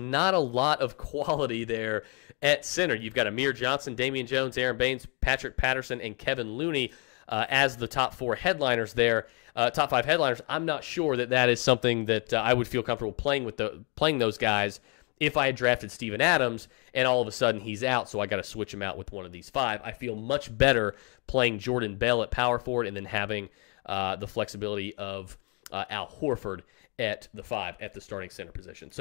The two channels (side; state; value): right; quieter; 34.2 dB